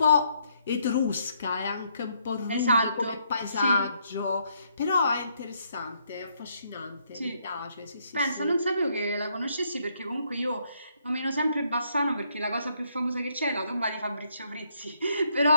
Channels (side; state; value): both; inverted; correlation -0.72